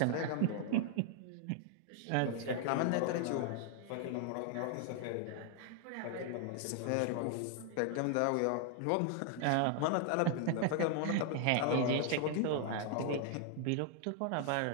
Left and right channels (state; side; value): different; both; correlation 0.00